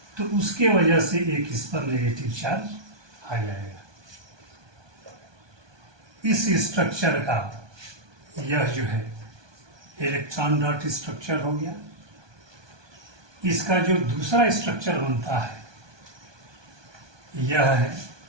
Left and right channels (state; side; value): late; left; 1.2 ms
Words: तो उसके वजह से एक इस पर नेगेटिव चार्ज आ जाएगा। इस स्ट्रक्चर का यह जो है इलेक्ट्रॉन डॉट स्ट्रक्चर हो गया। इसका जो दूसरा स्ट्रक्चर बनता है यह है,